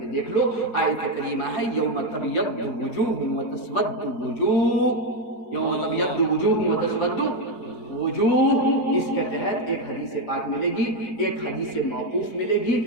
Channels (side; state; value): right; late; 4.9 ms